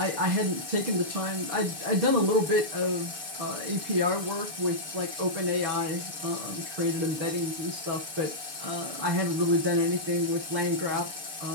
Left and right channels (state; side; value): late; left; 6.9 ms